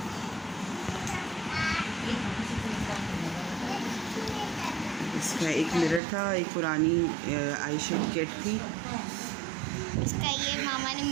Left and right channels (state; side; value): drops out; left; at 6.0 s